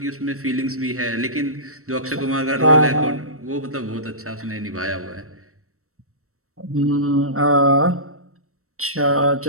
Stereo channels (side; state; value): left; late; 0.63 ms